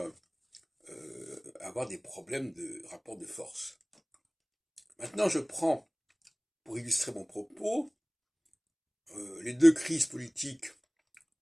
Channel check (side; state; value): both; identical; correlation 1.00